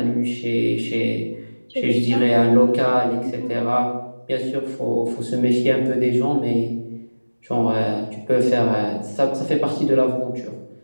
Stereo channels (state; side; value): inverted; both; correlation -1.00